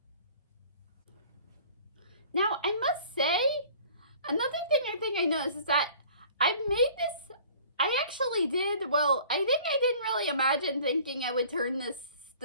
I must say, another thing I think I noticed is that I didn't really imagine thinking I would turn the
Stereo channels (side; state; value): both; inverted; correlation -0.50